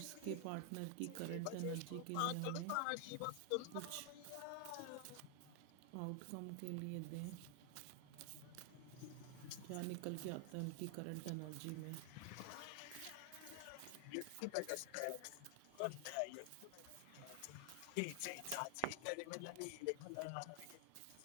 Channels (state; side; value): different; both; correlation 0.00